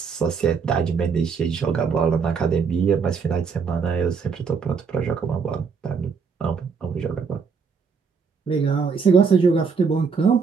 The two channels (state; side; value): quieter; left; 5.7 dB